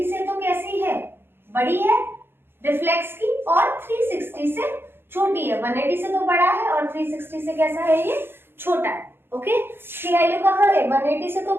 से तो कैसी है, बड़ी है रिफ्लेक्स की, और 360 से छोटी है। 180 से तो बड़ा है और 360 से कैसा है, ये छोटा है। ओके, इसकी वैल्यू कहाँ है, 180 से तो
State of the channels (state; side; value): late; left; 0.11 ms